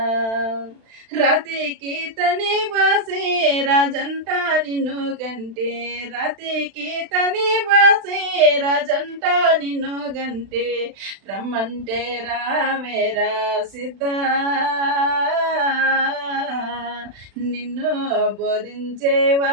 రాతికి తని బాసి రాజంట నిన్ను గంటే, రాతికి తని బాసి రాజంట నిన్ను గంటే, రమ్మంటే రావేరా సిద్ధ, నిన్ను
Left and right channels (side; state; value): left; late; 36 ms